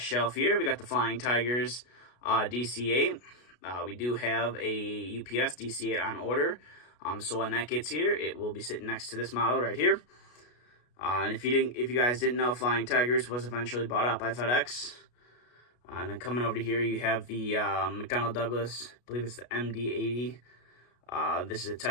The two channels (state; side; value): late; right; 33 ms